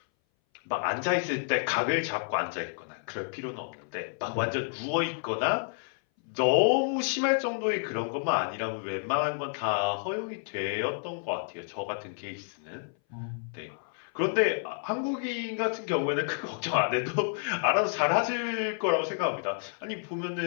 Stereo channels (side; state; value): right; silent; 58 dB below the other